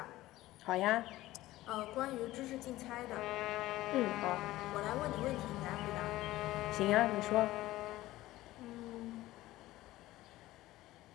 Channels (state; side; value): quieter; right; 16.7 dB